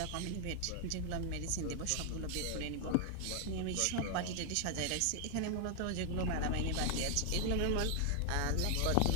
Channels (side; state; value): both; different; correlation 0.00